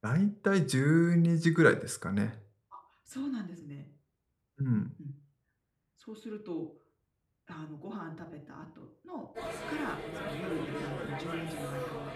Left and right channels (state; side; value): identical; both; correlation 1.00